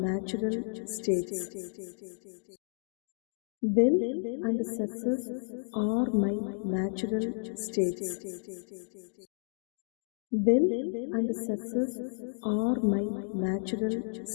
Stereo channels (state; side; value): silent; right; digital silence